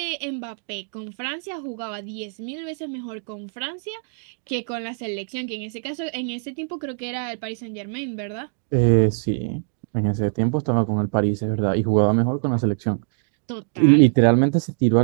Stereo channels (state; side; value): silent; left; 63 dB below the other